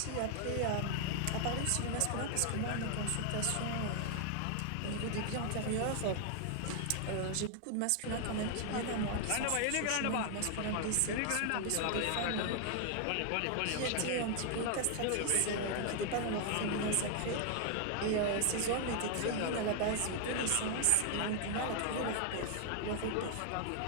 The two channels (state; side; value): different; both; correlation 0.00